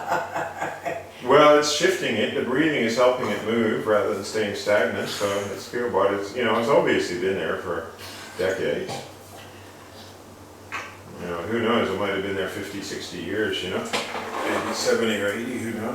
well, it's shifting it. The breathing is helping it move rather than staying stagnant. So it's good, but it's, you know, it's obviously been there for decades. You know, who knows? It might have been there 50, 60 years, you know? Maybe 70 or 80, who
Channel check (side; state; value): both; identical; correlation 1.00